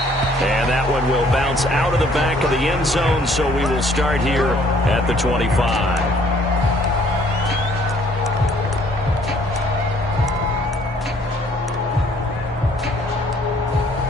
And that one will bounce out of the back of the end zone, so we will start here at the 25.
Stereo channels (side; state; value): both; normal; correlation 0.60